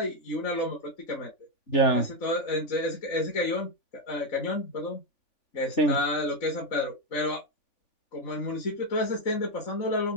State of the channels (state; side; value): late; right; 3.5 ms